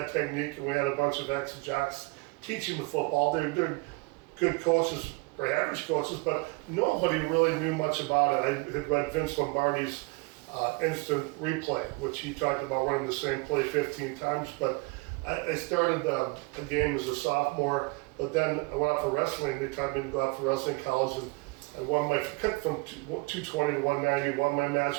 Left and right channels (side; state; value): left; quieter; 27.1 dB